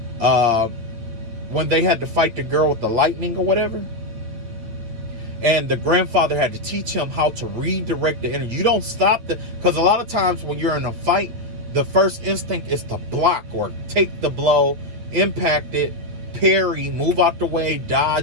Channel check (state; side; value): late; left; 8.6 ms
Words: when they had to fight the girl with the lightning or whatever. And the grandfather had to teach him how to redirect the energy. You don't stop because a lot of times when you're in a fight, the first instinct is to block or take the blow, impact it, parry, move out the way,